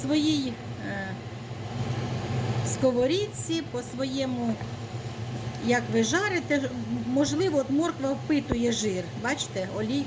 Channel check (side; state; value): both; identical; correlation 1.00